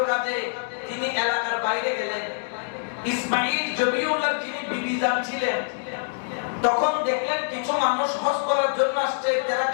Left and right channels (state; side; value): silent; right; digital silence